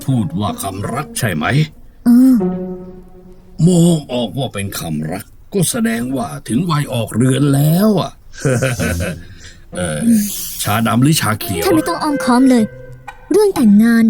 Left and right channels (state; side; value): identical; both; correlation 1.00